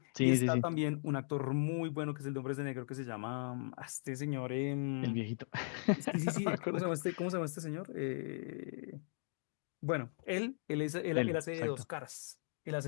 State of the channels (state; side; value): silent; right; digital silence